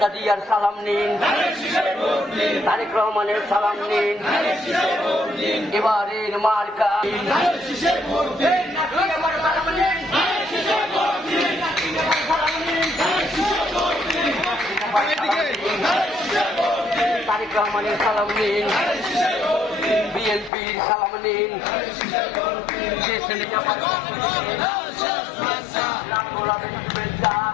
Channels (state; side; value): drops out; right; at 20.5 s